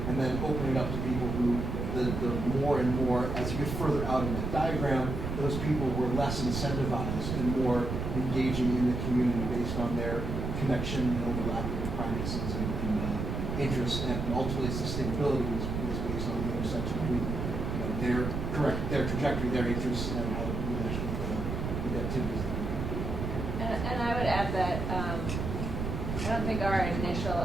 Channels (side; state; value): right; noise; rumble, 3 dB below the sound